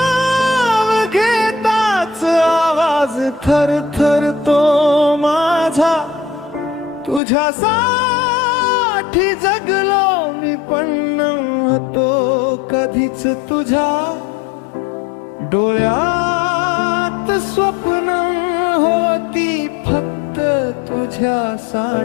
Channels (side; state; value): right; drops out; at 7.2 s